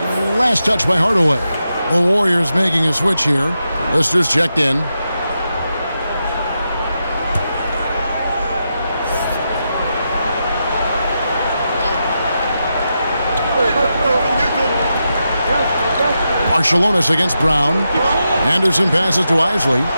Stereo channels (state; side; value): inverted; both; correlation -0.87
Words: Last touch by Hardaway. The Warriors making a switch here. Lister's checked in. Marshallonis against Brown. Anderson passes to Isley.